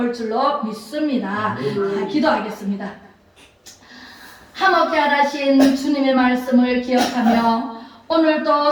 줄로 믿습니다. 기도하겠습니다. 화목케 하신 주님의 말씀을 기억하며 오늘도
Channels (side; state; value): both; identical; correlation 1.00